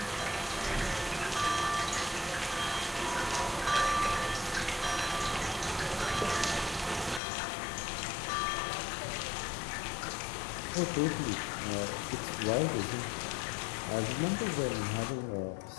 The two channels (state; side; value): drops out; right; at 7.2 s